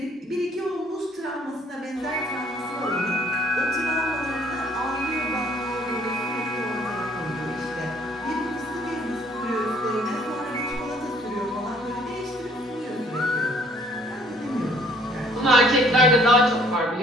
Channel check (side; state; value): both; normal; correlation 0.60